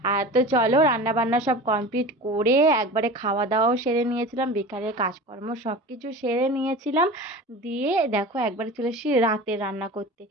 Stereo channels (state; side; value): normal; both; correlation 0.34